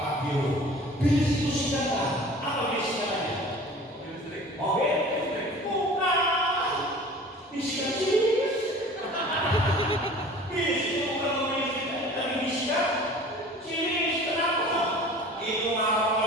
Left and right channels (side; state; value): both; normal; correlation 0.44